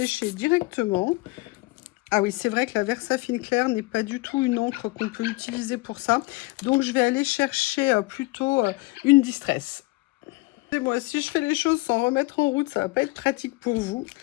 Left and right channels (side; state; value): right; quieter; 23.2 dB